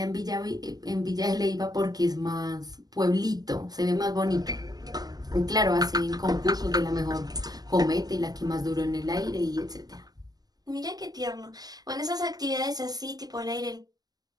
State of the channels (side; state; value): left; late; 0.19 ms